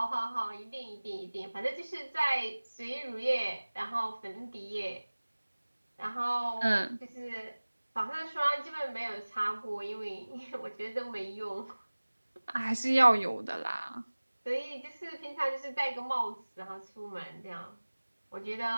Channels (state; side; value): inverted; both; correlation -1.00